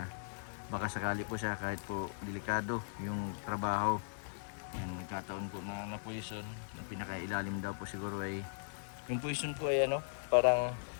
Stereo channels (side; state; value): right; silent; digital silence